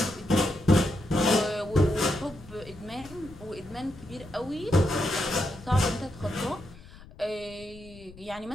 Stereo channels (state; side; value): noise; left; rumble, 19 dB below the sound